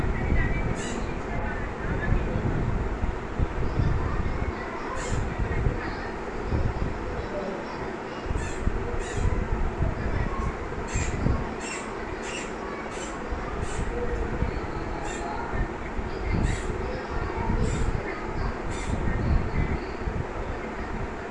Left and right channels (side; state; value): both; identical; correlation 1.00